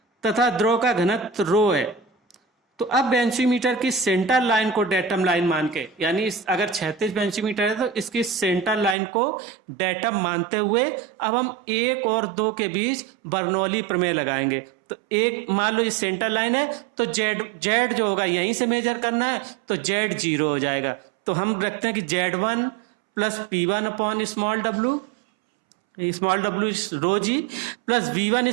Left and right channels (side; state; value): left; drops out; at 9.0 s